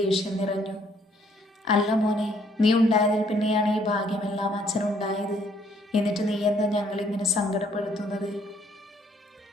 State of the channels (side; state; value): both; normal; correlation 0.65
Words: നിറഞ്ഞു. അല്ല മോനെ, നീ ഉണ്ടായതിൽ പിന്നെയാണ് ഈ ഭാഗ്യമെല്ലാം അച്ഛനുണ്ടായത്. എന്നിട്ട് നീ എന്താ ഞങ്ങളിങ്ങനെ സങ്കടപ്പെടുത്തുന്നത്?